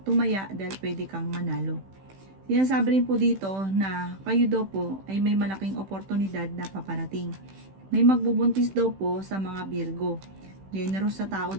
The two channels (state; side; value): late; left; 15 ms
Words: tumaya dahil pwede kang manalo. Sinasabi rin po dito na kayo daw po ay may malaking oportunidad na paparating. May magbubuntis daw po sa mga Virgo. Generous sa tao